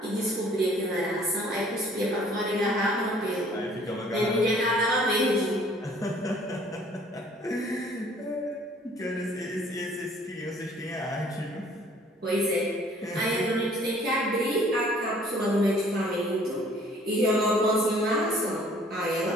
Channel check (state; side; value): normal; both; correlation 0.57